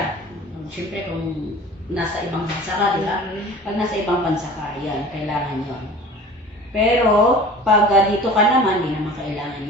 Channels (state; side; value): normal; both; correlation 0.42